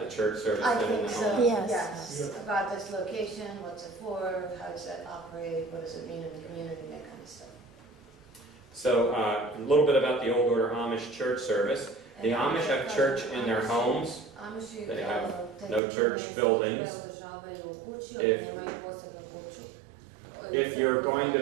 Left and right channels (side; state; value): left; drops out; at 15.8 s